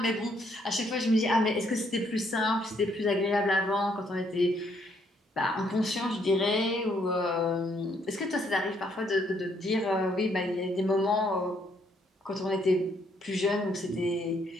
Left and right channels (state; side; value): normal; both; correlation 0.70